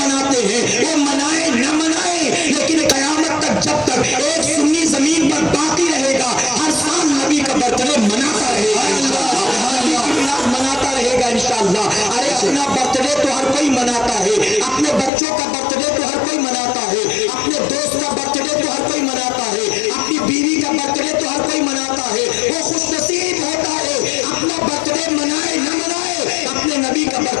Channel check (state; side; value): drops out; right; at 15.1 s